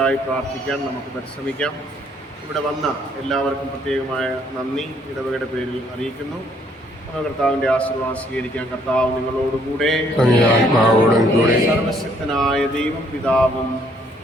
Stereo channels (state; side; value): normal; both; correlation 0.66